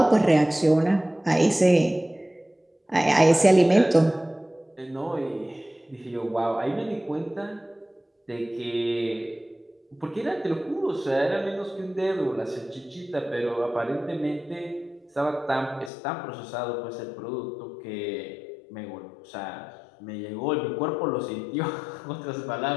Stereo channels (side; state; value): right; drops out; at 15.9 s